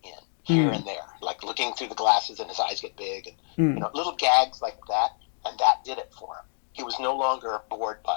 in here and there, like looking through the glasses and his eyes get big, and little gags like that, and that did it for him. He was no longer bored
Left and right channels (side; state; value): right; silent; digital silence